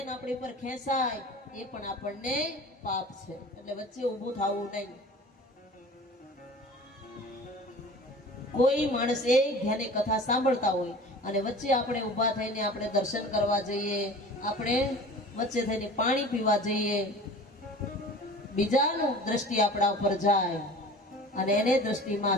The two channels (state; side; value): normal; both; correlation 0.41